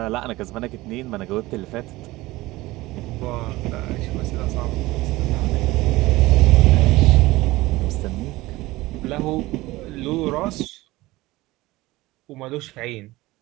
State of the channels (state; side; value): quieter; left; 19.2 dB